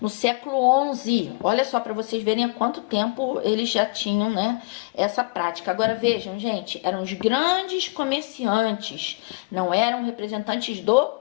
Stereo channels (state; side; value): quieter; right; 28.3 dB